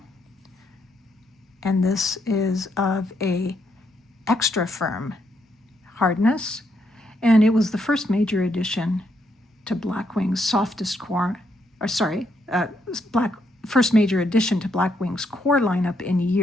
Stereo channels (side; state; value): both; normal; correlation 0.76